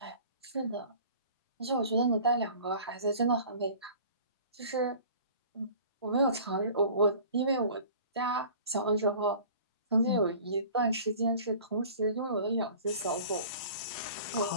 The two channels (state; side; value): inverted; both; correlation -0.45